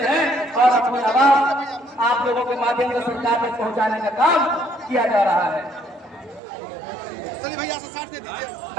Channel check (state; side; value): drops out; left; at 6.4 s